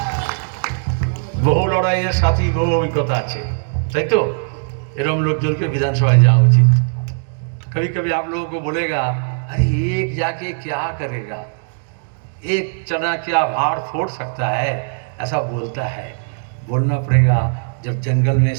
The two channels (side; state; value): left; silent; 67 dB below the other